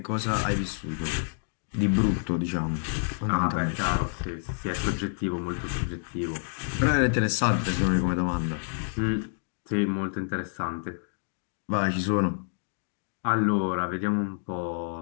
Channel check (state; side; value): silent; right; digital silence